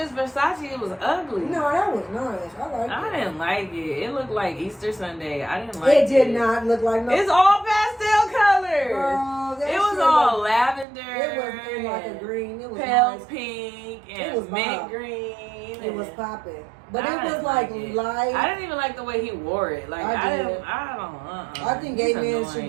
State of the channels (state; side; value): drops out; left; at 10.9 s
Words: Versace. It was ugly. No, that was nice. I liked I it. didn't like it. It looked like Easter Sunday. I didn't like it. It did not look like no. It's all pastel colors. Girl, that It was shit all looked- lavender. It was in like a green. It was pale nice. pink It and was mint bomb. green. It was and- popping. But I it was didn't like it. light. I didn't even like the way he wore it. Like I I did. don't. I think gay He's men should